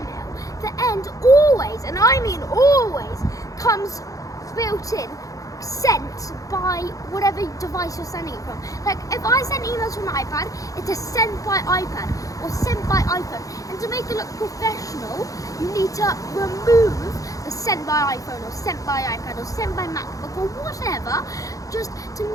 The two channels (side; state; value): right; late; 0.17 ms